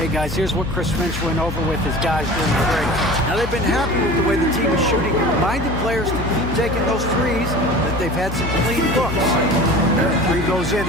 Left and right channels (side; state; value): left; noise; hum, 7 dB below the sound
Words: guys, here's what Chris Finch went over with his guys during the break. Now they've been happy with the way the team is shooting and reminded players to keep taking those threes, that they've had some clean looks. When the three goes in,